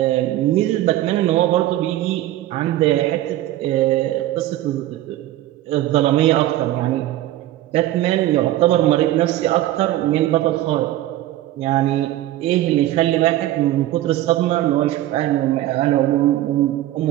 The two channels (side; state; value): left; quieter; 14.6 dB